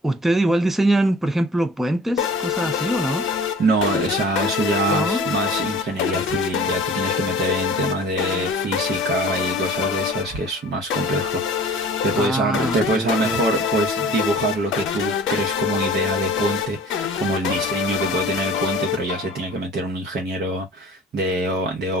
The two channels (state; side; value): normal; both; correlation 0.45